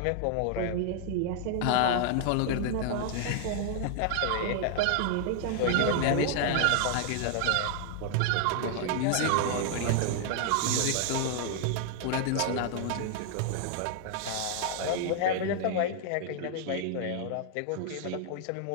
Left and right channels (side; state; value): both; different; correlation 0.00